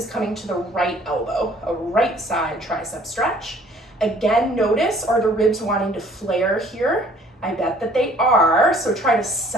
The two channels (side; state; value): both; normal; correlation 0.56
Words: coming to the right elbow, a right side tricep stretch. Again, notice, are the ribs wanting to flare here? I bet that they are, so try to